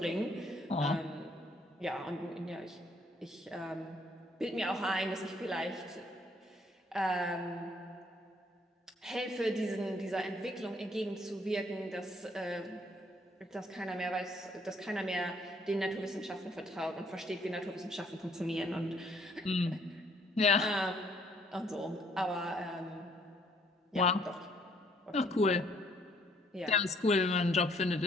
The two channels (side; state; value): both; normal; correlation 0.64